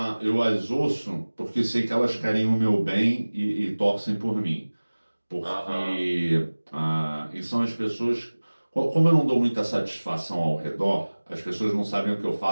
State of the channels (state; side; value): inverted; both; correlation -1.00